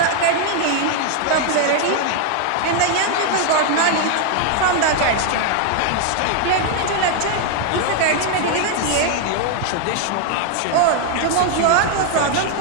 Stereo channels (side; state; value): both; different; correlation 0.00